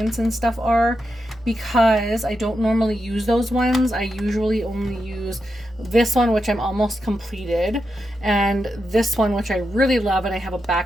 and stuff are, because I don't normally use those ones. I usually only use this one, which I'm almost completed, and this one, which I really love and I have a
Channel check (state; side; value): normal; both; correlation 0.87